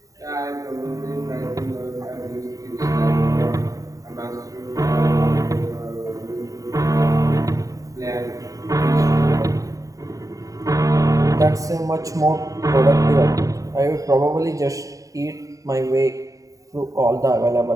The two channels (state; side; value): late; left; 0.16 ms